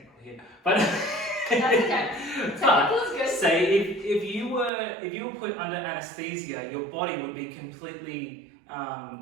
here, but That's okay. Technical is good. say if you were put under anesthesia, your body would be completely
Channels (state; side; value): drops out; left; at 4.7 s